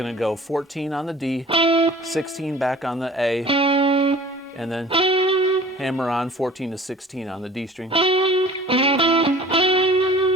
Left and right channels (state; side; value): normal; both; correlation 0.46